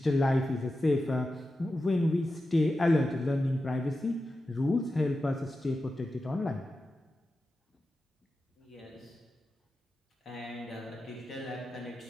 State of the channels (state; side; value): normal; both; correlation 0.92